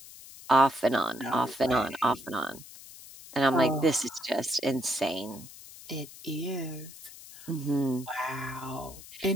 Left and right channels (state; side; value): noise; left; hiss, 17 dB below the sound